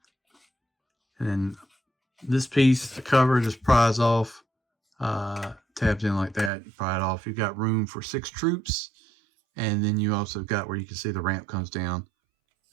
And then this piece, the cover, just pries off, tabs in like that. You pry it off. You've got room for 6 troops, and then you also got where you can see the ramp comes down.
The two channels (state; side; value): drops out; left; at 6.5 s